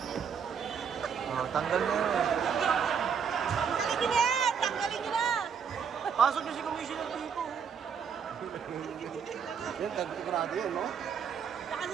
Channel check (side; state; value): left; quieter; 7.0 dB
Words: Oh, tanggal na yun. Tanggalin niyo yan! Tanggalin niyo na! Pasok niyo si Commissioner dito. Yan, tagtigrado yun, no? Saka